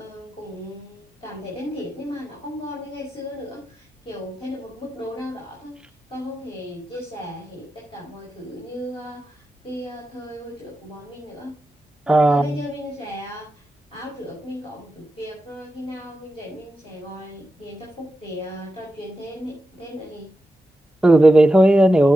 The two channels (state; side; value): normal; both; correlation 0.90